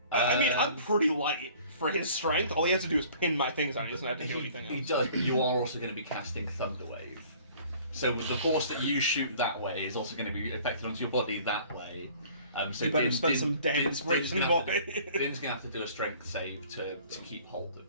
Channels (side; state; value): both; inverted; correlation -0.51